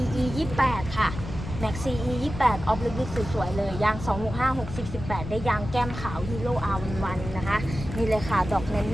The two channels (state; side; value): noise; left; rumble, 9 dB below the sound